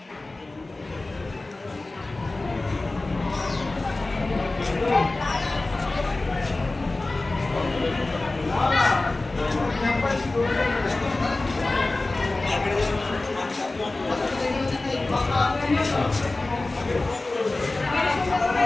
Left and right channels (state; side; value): quieter; right; 3.1 dB